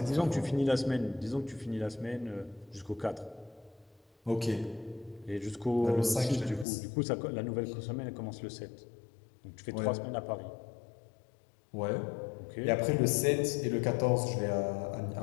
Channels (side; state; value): right; drops out; at 6.7 s